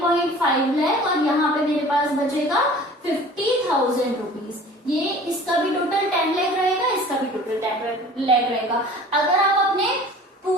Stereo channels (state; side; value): normal; both; correlation 0.45